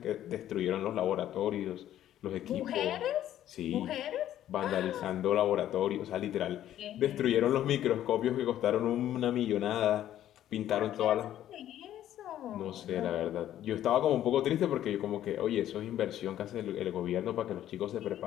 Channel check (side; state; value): right; quieter; 12.0 dB